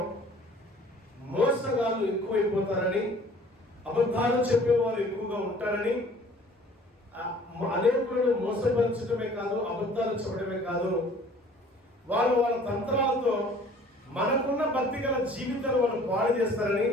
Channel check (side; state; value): both; normal; correlation 0.52